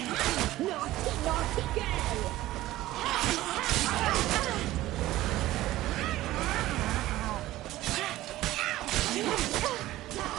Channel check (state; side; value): quieter; left; 16.0 dB